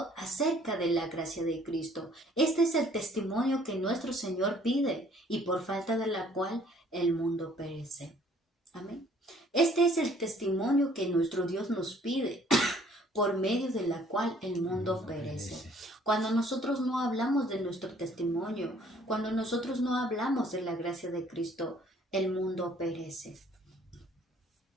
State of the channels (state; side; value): normal; both; correlation 0.59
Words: acerca de la gracia de Cristo. Este es el testimonio que nuestro Señor pide y por falta de la cual el mundo perece. Amén. Este es el testimonio que nuestro Dios nos pide, por medio de la cual el mundo perece. Cuando nosotros no hablamos de nuestro testimonio, cuando nosotros no hablamos de la gracia de Cristo, el mundo perece.